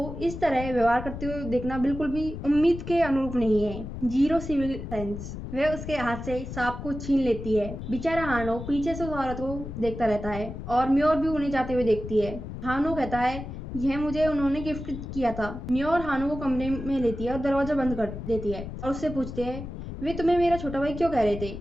इस तरह व्यवहार करते हुए देखना बिल्कुल भी उम्मीद के अनुरूप नहीं है। Zero civil sense. वह उसके हाथ से सांप को छीन लेती है। बेचारा हानो पीछे से उस औरत को देखता रहता है और म्योर भी उन्हें जाते हुए देखती है। हानो कहता है यह मुझे उन्होंने गिफ्ट किया था। म्योर हानो को कमरे में लेती है और दरवाजा बंद कर देती है और उससे पूछते है वे तुम्हें मेरा छोटा भाई क्यों कह रहे थे।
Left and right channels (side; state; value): left; noise; rumble, 9 dB below the sound